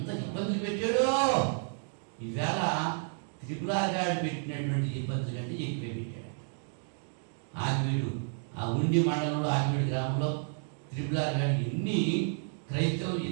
ఇబ్బందులు పెట్టాడో! ఈవేళ త్రిపురాగాడు పెట్టినటువంటి ఇబ్బందులు కంటే ఎక్కువే పెట్టాడు. ఆగివీడు, ఆ ఉండి మండలంలో ఆగివీడు గ్రామంలో త్రిపురాగాడు ఎన్ని క్రైస్తవులు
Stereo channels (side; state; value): left; silent; 57 dB below the other